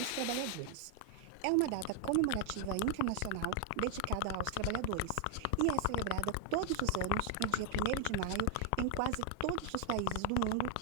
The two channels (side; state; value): both; different; correlation 0.00